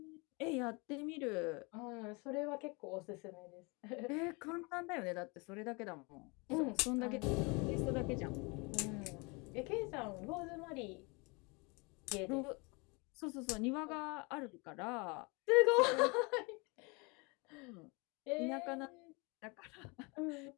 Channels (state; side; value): quieter; right; 29.2 dB